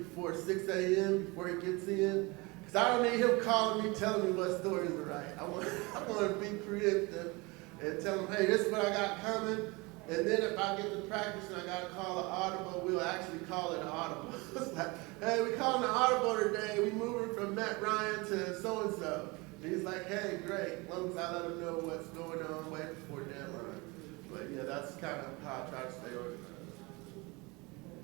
6 a.m., before he gets in. Because I don't need him calling me, telling me what stories to write. I want to be preemptive and tell him, hey, this is what I got coming. And then if I get to practice and I got to call an audible, we'll actually call it an audible. It's like, hey, we calling an audible today. We moving from Matt Ryan to so-and-so. And he's like, hey, great. As long as I let him know what's going on way before deadline. But yeah, that's kind of how I try to stay organized.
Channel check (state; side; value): quieter; left; 25.6 dB